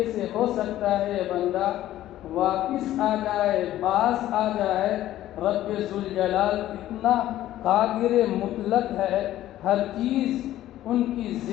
سے ہو سکتا ہے یہ بندہ واپس آ جائے، باز آ جائے۔ رب ذوالجلال اتنا قادر مطلق ہے، ہر چیز ان کی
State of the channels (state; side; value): quieter; right; 13.6 dB